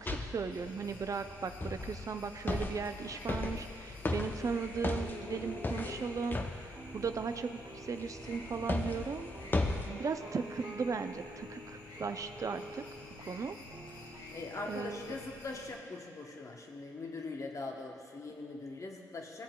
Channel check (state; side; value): normal; both; correlation 0.76